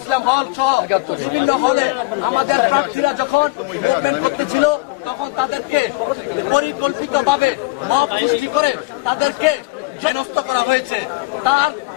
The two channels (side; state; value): right; quieter; 23.3 dB